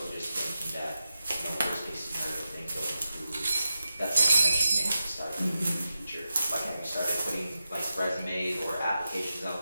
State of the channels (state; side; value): inverted; both; correlation -0.91